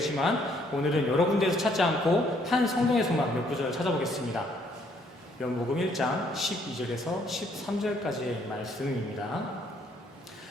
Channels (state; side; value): normal; both; correlation 0.67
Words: 오늘은 여러 군데에서 찾지 않고 한 성경에서만 몇 구절을 찾아보겠습니다. 요한복음 1장 12절에서 13절까지의 말씀입니다.